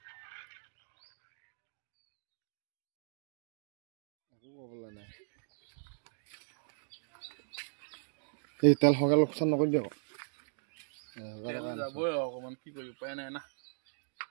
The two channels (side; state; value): left; silent; digital silence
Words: একো ক'বলৈ নাই এই তেল সৰকাল লোকচান নকৰিবি আকৌ যাবই অকমান কি কৰি উপায় নাই না